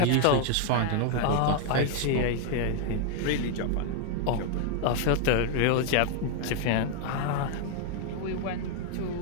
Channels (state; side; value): different; both; correlation 0.00